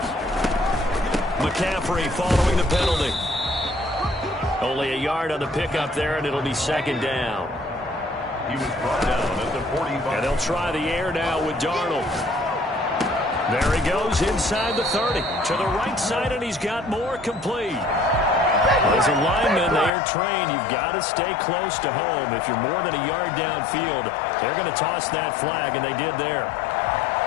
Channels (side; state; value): right; drops out; at 19.9 s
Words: McCaffrey following the penalty. Only a yard on the pickup there, and it'll be 2nd down. He was brought down at the 45. And they'll try the air now with Darnold. There he goes inside the 30. To the right side, and he's got more complete. As a lineman, they are trained. You've got to stay close to home. If you're more than a yard downfield, they're going to toss that flag, and they did there.